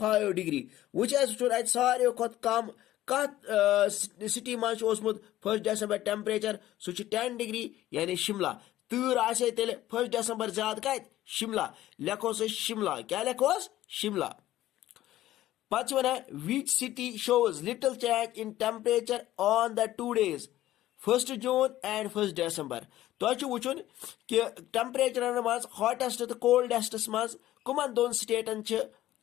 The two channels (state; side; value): quieter; right; 14.4 dB